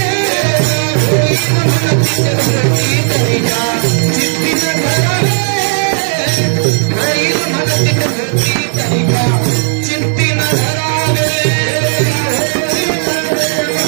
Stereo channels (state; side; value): silent; left; digital silence